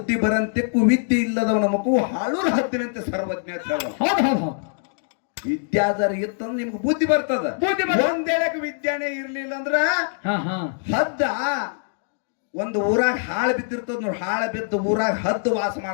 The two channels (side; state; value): right; silent; digital silence